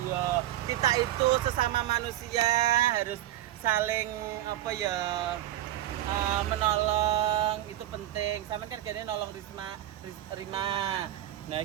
ya kita itu sesama manusia harus saling apa ya menolong, itu penting. Sama kan gini nolong Rima. Nah,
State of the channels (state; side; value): quieter; left; 13.7 dB